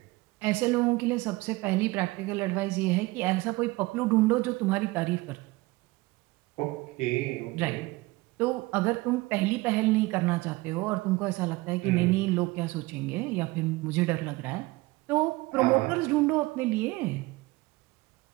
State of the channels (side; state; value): left; quieter; 21.5 dB